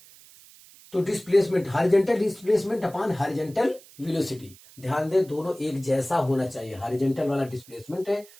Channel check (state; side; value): noise; right; hiss, 23 dB below the sound